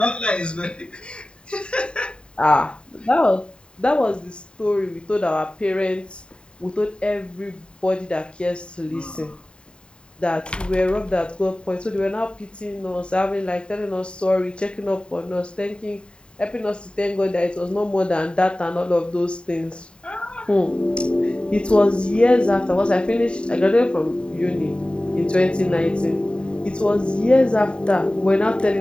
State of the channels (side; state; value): right; late; 0.052 ms